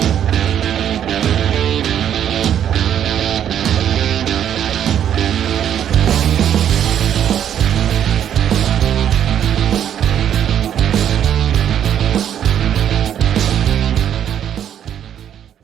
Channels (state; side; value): quieter; left; 9.8 dB